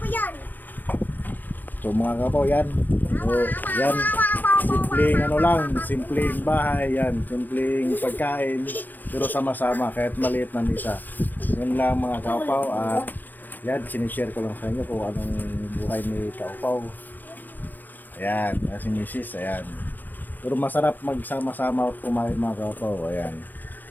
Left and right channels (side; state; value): right; late; 0.086 ms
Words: yan. So mga kapaw, yan. So yan, simpleng ano lang, simpleng bahay yan, simpleng pagkain, pero sama-sama kahit maliit na misa. Yun lang mga kapaw. At yan, sinishare ko lang sa inyo kung anong buhay ni kapaw. Ayan, si Mrs. Ayan. Pero masarap magsama-sama at kumain mga kapaw. Ayan.